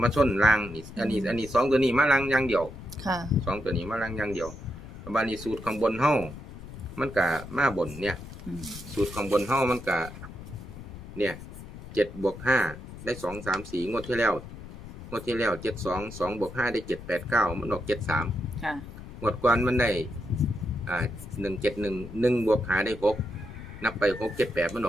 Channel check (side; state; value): left; noise; rumble, 13 dB below the sound